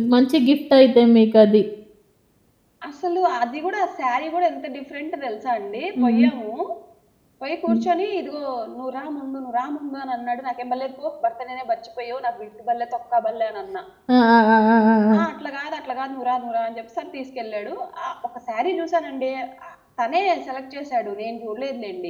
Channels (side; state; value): both; identical; correlation 1.00